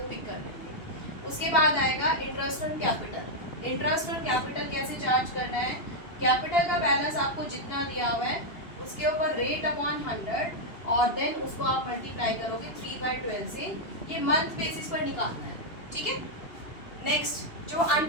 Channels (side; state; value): right; late; 2.9 ms